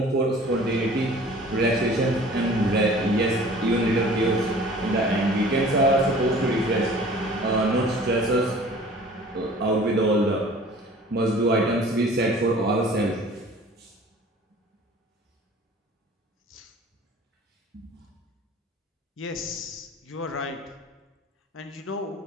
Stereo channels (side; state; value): both; normal; correlation 0.47